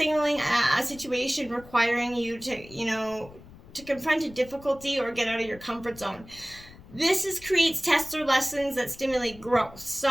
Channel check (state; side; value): noise; left; rumble, 20 dB below the sound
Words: a situation requiring you to confront a difficulty or get out of your comfort zone. This creates tests or lessons that stimulate growth.